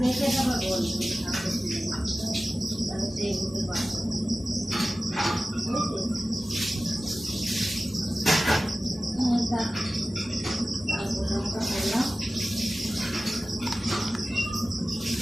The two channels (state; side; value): normal; both; correlation 0.96